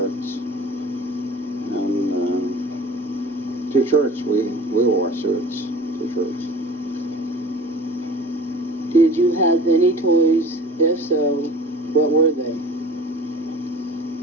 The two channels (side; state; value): both; normal; correlation 0.43